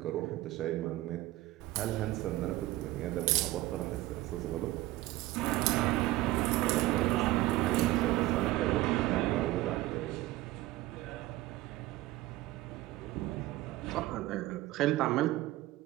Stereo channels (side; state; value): left; quieter; 17.3 dB